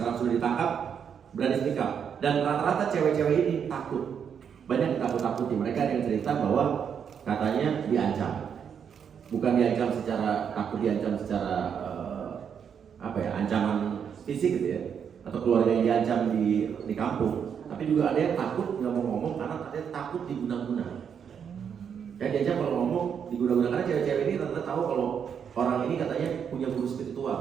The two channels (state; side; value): quieter; left; 7.6 dB